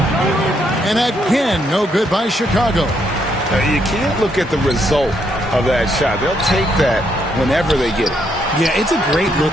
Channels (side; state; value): both; normal; correlation 0.74